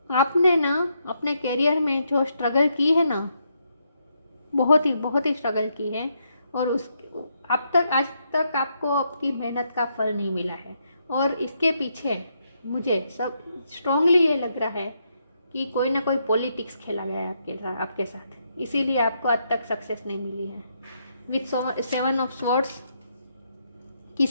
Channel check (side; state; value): both; inverted; correlation -0.78